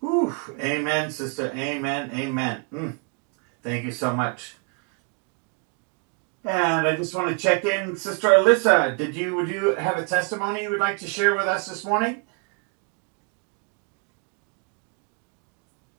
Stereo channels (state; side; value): quieter; left; 37.7 dB